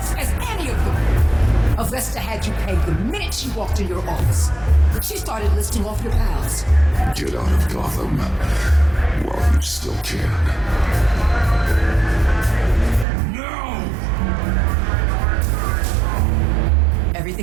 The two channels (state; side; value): drops out; left; at 13.1 s